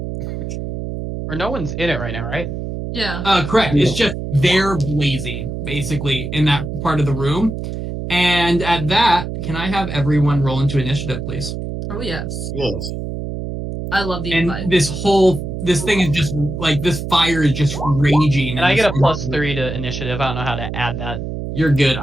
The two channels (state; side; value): noise; right; hum, 6 dB below the sound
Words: Or no one's in it right now, right? Yeah. Correct. It's just they're blazing, basically, in that part of the room. And at that, can I have everyone roll into initiative, please? Oh yes. Yes. I love the And invite. this thing is just like this fire is just raging. And I get a +3 to initiative. I don't know how to add that. You're good.